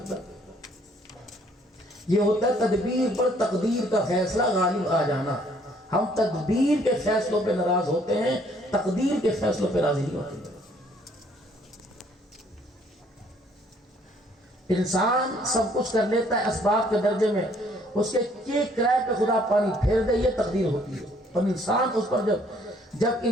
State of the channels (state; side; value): normal; both; correlation 0.63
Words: یہ ہوتا ہے تدبیر پر تقدیر کا فیصلہ غالب آ جانا۔ ہم تدبیر کے فیصلوں پہ ناراض ہوتے ہیں، تقدیر کے فیصلوں پہ راضی نہیں ہوتے۔ انسان سب کچھ کر لیتا ہے اسباب کے درجے میں، اس کے کرائے پہ خدا پانی پھیر دے، یہ تقدیر ہوتی ہے۔ اور انسان اس پر جب